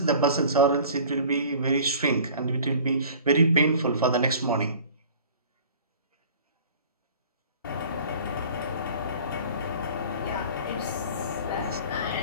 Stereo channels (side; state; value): both; inverted; correlation -0.46